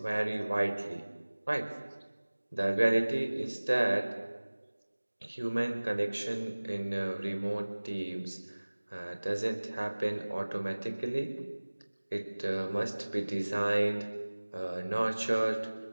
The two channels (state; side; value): inverted; both; correlation -1.00